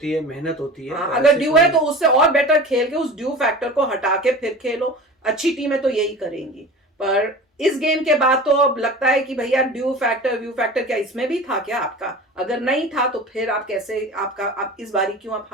है, मेहनत होती है। अगर ड्यू है तो उससे और बेटर खेल के उस ड्यू फैक्टर को हटा के फिर खेलो। अच्छी टीमें तो यही करेंगी। पर इस गेम के बाद तो अब लगता है कि भैया ड्यू फैक्टर व्यू फैक्टर क्या इसमें भी था क्या आपका? अगर नहीं था तो फिर आप कैसे, आप इस बारी क्यों आप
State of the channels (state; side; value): normal; both; correlation 0.36